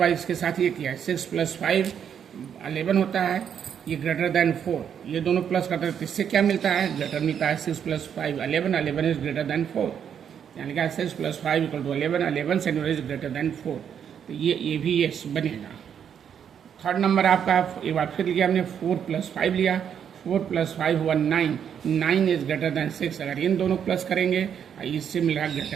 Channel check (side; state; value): left; quieter; 8.3 dB